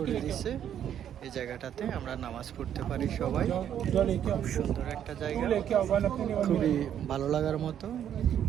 দিয়েছে। এই জায়গাটাতে আমরা নামাজ পড়তে পারি সবাই। খুব সুন্দর একটা জায়গা, খুবই ভালো লাগার মতো।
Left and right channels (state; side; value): quieter; left; 9.8 dB